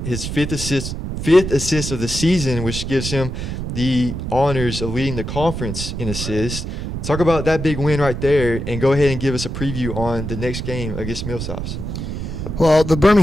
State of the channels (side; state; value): right; noise; rumble, 5 dB below the sound